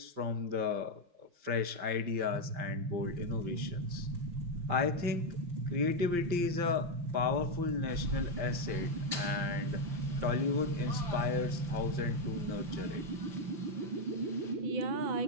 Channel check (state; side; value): late; left; 5.7 ms